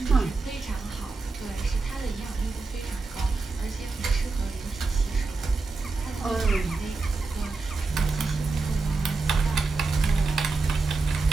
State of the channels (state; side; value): quieter; left; 3.9 dB